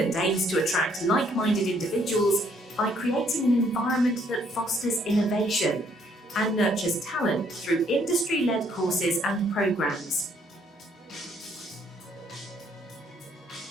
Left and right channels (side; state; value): both; normal; correlation 0.67